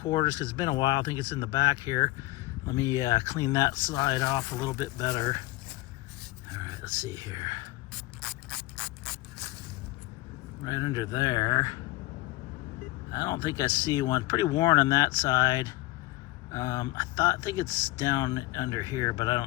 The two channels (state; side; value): quieter; right; 20.0 dB